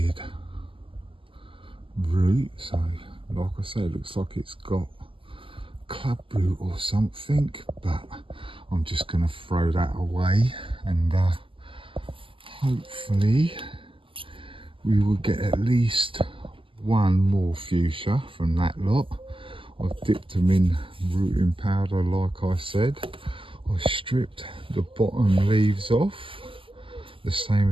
root, so like I say, it looks like it's got club root or something, but I'm just going to throw that away, and hopefully we will get at least one more fuchsia from that lot. I've dipped them in rooting powder like I said. I stripped the bottom leaves off, the same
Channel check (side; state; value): left; late; 0.25 ms